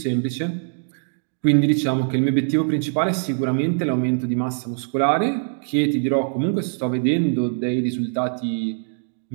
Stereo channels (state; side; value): silent; left; digital silence